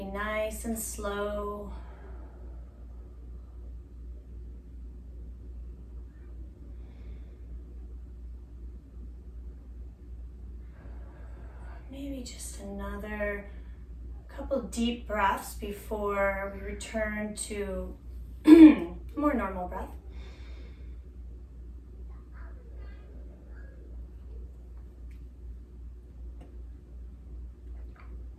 nice and slow. Maybe just another couple deep breaths before we return to more normal breath.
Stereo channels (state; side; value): identical; both; correlation 1.00